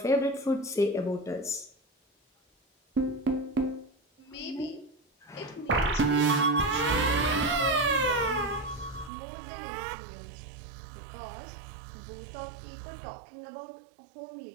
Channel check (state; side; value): drops out; left; at 9.1 s